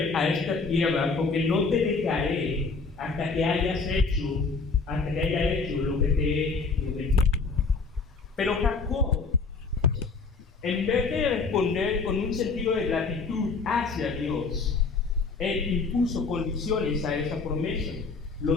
a esta tierra, porque no te dejaré hasta que haya hecho lo que te he prometido. Pero Jacob, en vez de responder con un sentido de gratitud hacia Dios, él impuso condiciones a esa promesa.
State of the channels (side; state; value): right; quieter; 4.3 dB